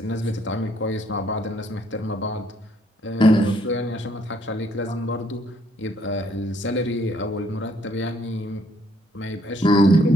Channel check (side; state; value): both; normal; correlation 0.68